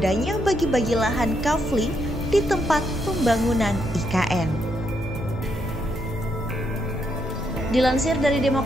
bagi-bagi lahan kafling di tempat pembangunan IKN. Dilansir dari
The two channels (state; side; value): normal; both; correlation 0.78